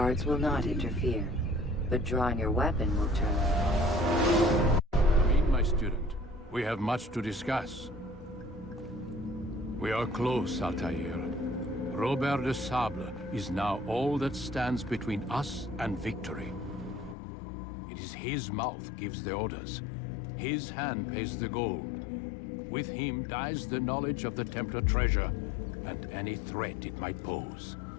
will not interfere, but drawing your weapon will turn. Meet my student. We have much to discuss. We are close, Altair. Robert de Sable is now all that stands between us and victory. It is his mouth gives the orders. His hand pays the gold. With him dies the knowledge of the Templar treasure, and any threat it might pose.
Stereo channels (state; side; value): drops out; right; at 17.2 s